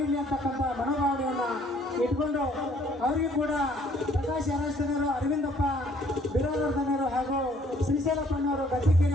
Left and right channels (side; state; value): both; normal; correlation 0.61